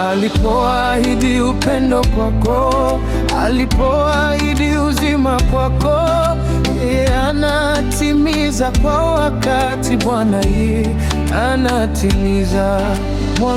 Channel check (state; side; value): identical; both; correlation 1.00